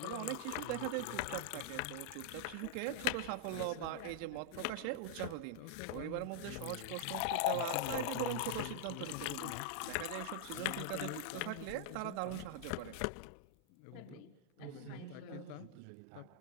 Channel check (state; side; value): different; both; correlation -0.01